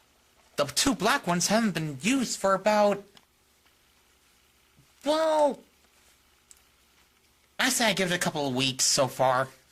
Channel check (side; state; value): both; identical; correlation 1.00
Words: The two black ones haven't been used for about, well, I say I give it a couple of weeks so far.